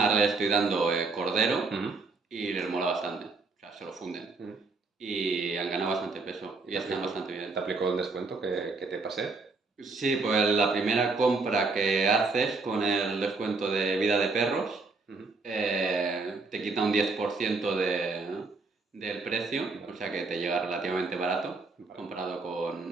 ahora le estoy dando cordero y les mola bastante. O sea, se lo funden. Y han ganado bastante peso y están bastante bien. ¿Te aplicó el descuento que te pasé? Sí, pues la primera compra que haces con el descuento de vida de perros te quita un 10% del precio, o sea que te llega relativamente barato comparado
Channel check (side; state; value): left; quieter; 3.9 dB